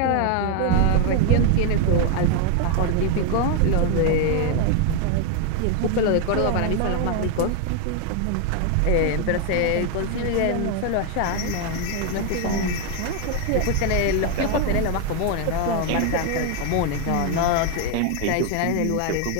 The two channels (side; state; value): both; different; correlation 0.01